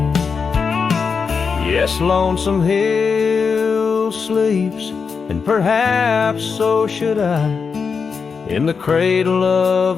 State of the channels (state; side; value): quieter; right; 5.6 dB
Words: Yes, Lonesome Hill sleeps, and perhaps so should I, in the cradle